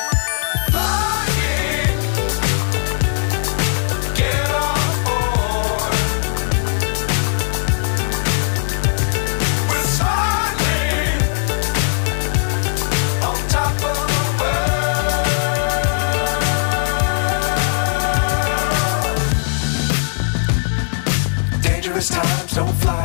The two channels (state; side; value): silent; right; digital silence